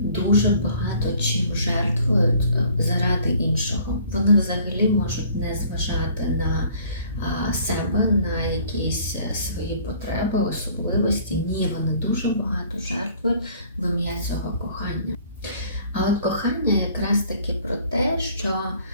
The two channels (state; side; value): inverted; both; correlation -0.55